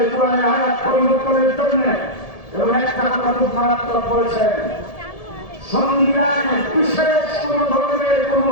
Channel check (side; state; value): right; late; 1.7 ms